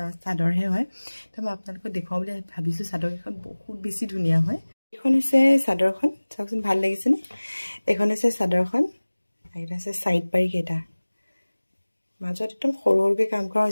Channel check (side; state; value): both; inverted; correlation -1.00